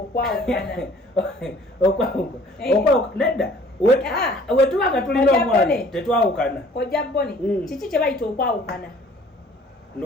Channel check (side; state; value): both; normal; correlation 0.53